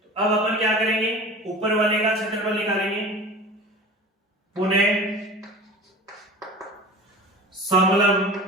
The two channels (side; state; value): both; normal; correlation 0.36